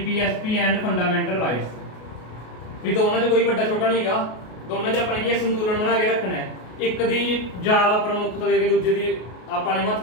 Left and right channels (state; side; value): late; right; 33 ms